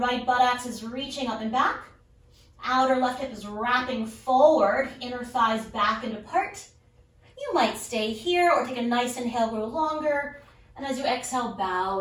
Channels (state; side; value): identical; both; correlation 1.00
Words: buttocks is reaching up and back. Outer left hip is wrapping forward, inner thighs back and apart. You might stay here or take a nice inhale, grow longer. And as you exhale, bow